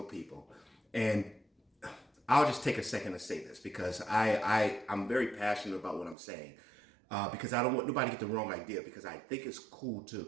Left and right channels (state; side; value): drops out; left; at 6.2 s